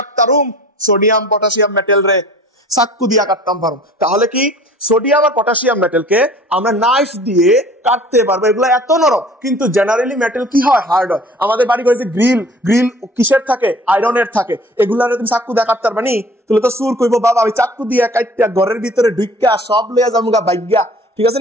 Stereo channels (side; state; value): both; normal; correlation 0.48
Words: সোডিয়াম পটাশিয়াম মেটেল রে চাকু দিয়া কাটতাম পারো তাহলে কি সোডিয়াম আর পটাশিয়াম মেটেলকে আমরা নাইফ দিয়ে কাটতে পারবো এগুলো এত নরম কিন্তু জেনারেলি মেটেল কি হয় হার্ড হয় আমাদের বাড়ি ঘরে যে গ্রিল কিসের থাকে আয়রনের থাকে এগুলারে তুমি চাকু দিয়া কাটতে পারবা নি তুলে তো সুর কইবো বাবা আমি চাকু দিয়া কাটতে ঘরের ভিতরে ঢুইকা সব লইয়া যামুগা বাইগা ঠিক আছে